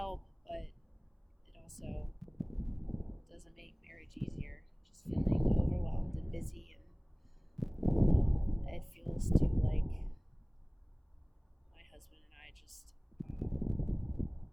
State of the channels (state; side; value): identical; both; correlation 1.00